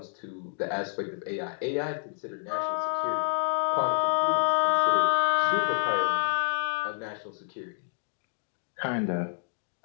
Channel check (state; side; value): silent; right; digital silence